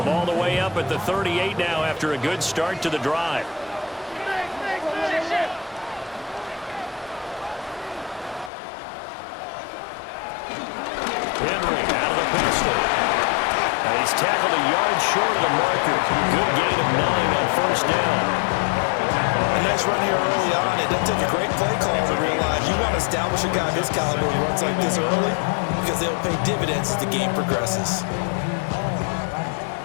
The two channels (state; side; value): drops out; right; at 8.5 s